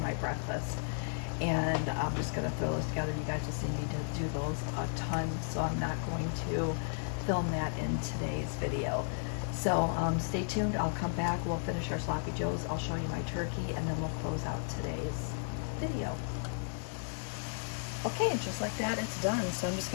breakfast, and I'm just gonna throw those together. You guys will see me do those a ton, so I'm not going to film that in today's video. So stay tuned, I'll come back, we'll finish our sloppy joes, I'll show you my turkey, and then we'll close out today's video. Okay, and just like that, it's done. So I'm just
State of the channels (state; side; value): silent; right; digital silence